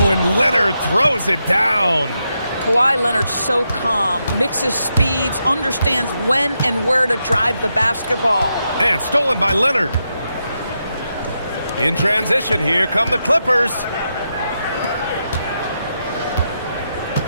and Leonard throws it down. Kawhi Leonard's so calm, mixes speeds, understands when and where to drive the basketball. And stolen by Leonard. In transition, here come the Clippers.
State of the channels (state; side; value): inverted; both; correlation -0.84